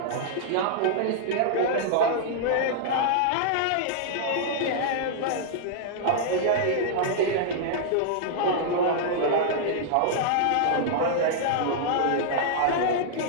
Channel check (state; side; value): different; both; correlation -0.01